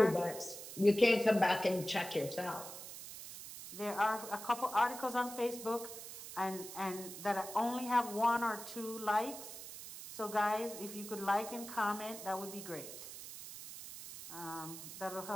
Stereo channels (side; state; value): right; noise; hiss, 11 dB below the sound